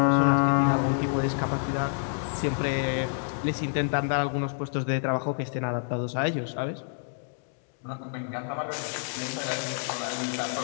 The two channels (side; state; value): right; silent; digital silence